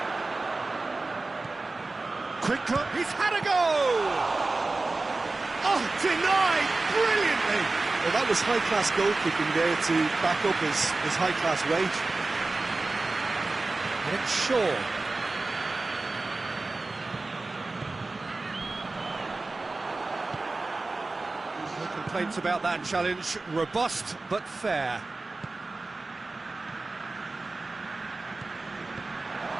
Quick cut, he's had a go! Oh, denied brilliantly! Well, that was high-class goalkeeping there to back up his high-class wage. It's Shaw. No complaints about that challenge. Robust, but fair.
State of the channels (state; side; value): quieter; left; 3.4 dB